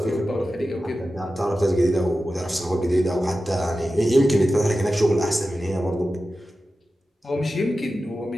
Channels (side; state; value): both; normal; correlation 0.93